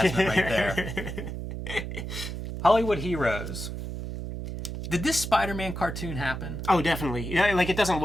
right there. Hollywood Heroes. Did this Spider-Man cartoon happen? Oh, definitely. Yeah, like, it doesn't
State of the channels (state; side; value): noise; right; hum, 6 dB below the sound